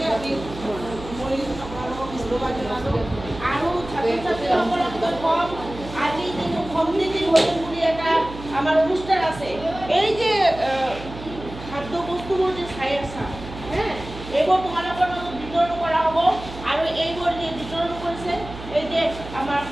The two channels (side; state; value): right; noise; hum, 13 dB below the sound